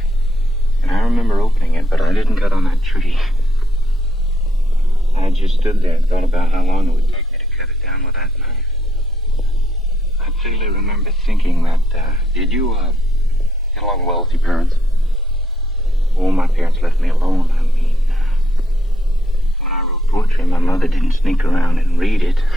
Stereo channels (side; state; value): both; normal; correlation 0.75